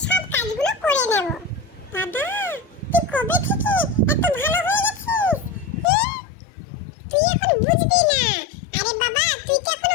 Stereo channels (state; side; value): drops out; right; at 5.9 s